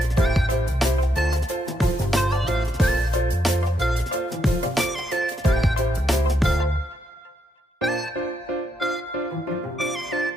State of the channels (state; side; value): normal; both; correlation 0.77